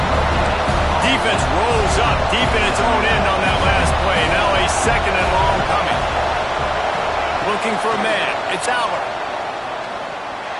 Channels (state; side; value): identical; both; correlation 1.00